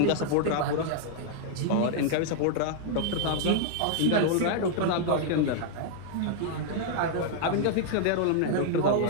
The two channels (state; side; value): different; both; correlation -0.01